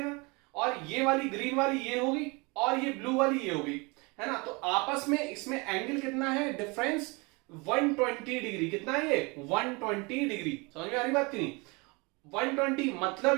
और ये वाली ग्रीन वाली ये होगी, और ये ब्लू वाली ये होगी, है ना? तो आपस में इसमें एंगल कितना है डिफरेंस? 120 डिग्री। कितना है ये? 120 डिग्री। समझ में आ रही बात की नहीं? 120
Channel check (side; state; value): left; quieter; 27.9 dB